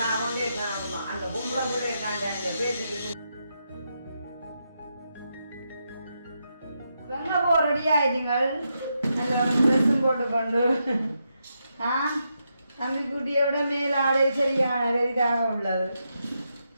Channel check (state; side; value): inverted; both; correlation -0.83